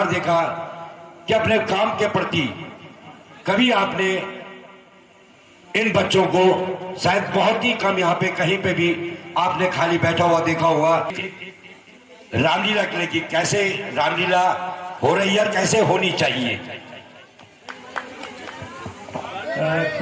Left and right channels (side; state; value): both; identical; correlation 1.00